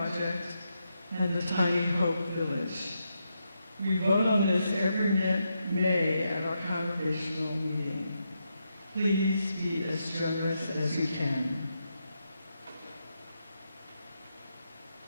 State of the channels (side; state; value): both; inverted; correlation -0.83